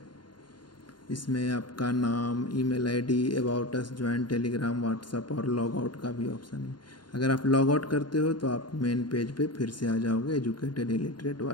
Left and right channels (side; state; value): right; late; 0.71 ms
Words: इसमें आपका नाम, email ID, about us, join Telegram, WhatsApp और लॉग आउट का भी ऑप्शन है। अगर आप लॉग आउट करते हो तो आप मेन पेज पे फिर से आ जाओगे, एजुकेटेड इलिटरेट